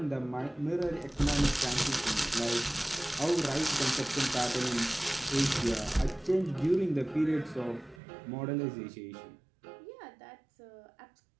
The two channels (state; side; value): drops out; left; at 8.0 s